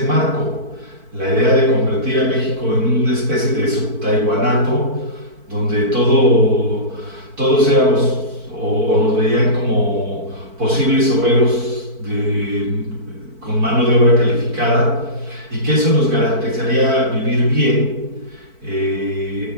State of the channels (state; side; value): late; left; 4.5 ms